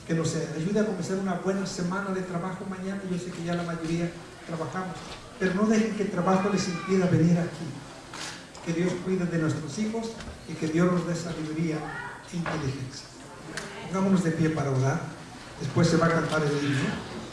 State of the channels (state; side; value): identical; both; correlation 1.00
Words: que nos ayude a comenzar una buena semana de trabajo mañana. Yo sé que ya la mayoría trabajamos, pero no dejen que el trabajo les impida venir aquí. Que Dios cuide de nuestros hijos y que Dios nos dé sabiduría e inteligencia. Pongámonos de pie para orar. Después se va a cantar el himno.